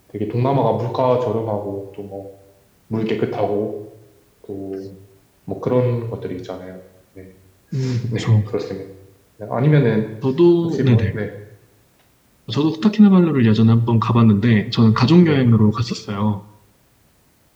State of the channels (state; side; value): identical; both; correlation 1.00